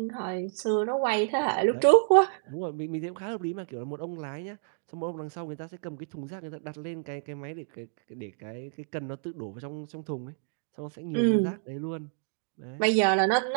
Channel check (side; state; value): left; silent; digital silence